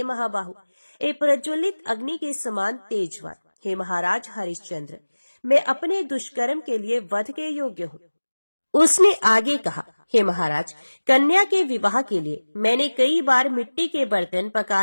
महाबाहु, एक प्रज्वलित अग्नि के समान तेजवान, हे महाराज हरिश्चंद्र, मैं अपने दुष्कर्म के लिए वध के योग्य हूँ। उसने आगे कहा, हे महाराज, कन्या के विवाह के लिए मैंने कई बार मिट्टी के बर्तन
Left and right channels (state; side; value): inverted; both; correlation -1.00